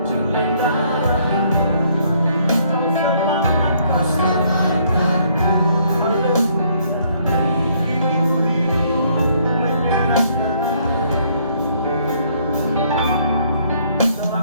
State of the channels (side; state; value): both; inverted; correlation -0.67